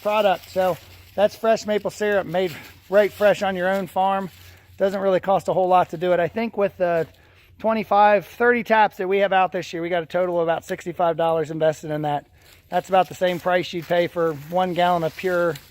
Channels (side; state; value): both; identical; correlation 1.00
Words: product. So that's fresh maple syrup made right fresh on your own farm. Doesn't really cost a whole lot to do it. I think with the 30 taps that we have out this year, we got a total of about $65 invested in that. That's about the same price you'd pay for 1 gallon of pure